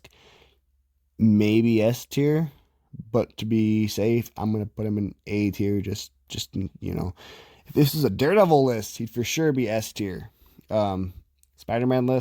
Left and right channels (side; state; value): both; identical; correlation 1.00